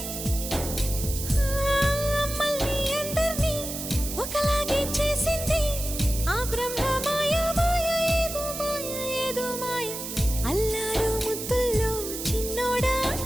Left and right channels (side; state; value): right; noise; hiss, 7 dB below the sound